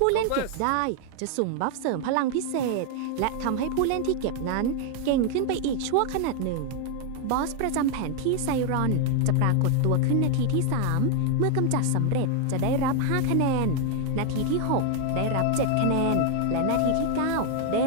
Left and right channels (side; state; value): both; different; correlation 0.00